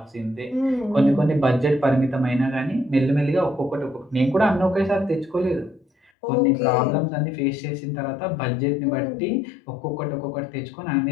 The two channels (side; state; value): right; drops out; at 6.1 s